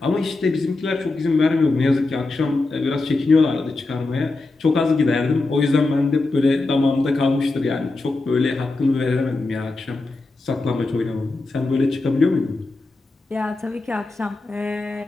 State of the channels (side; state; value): right; quieter; 3.3 dB